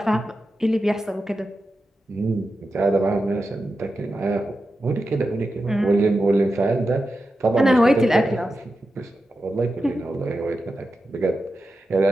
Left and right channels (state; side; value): normal; both; correlation 0.90